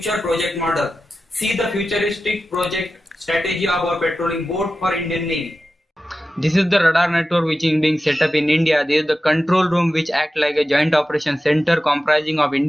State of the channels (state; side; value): normal; both; correlation 0.93